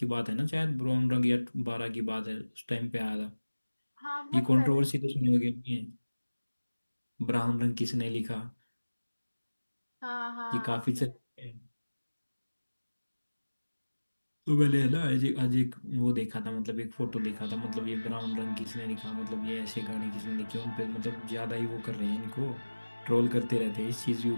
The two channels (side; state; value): both; inverted; correlation -1.00